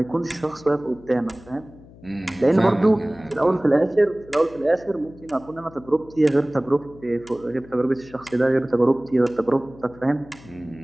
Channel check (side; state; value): left; noise; hum, 22 dB below the sound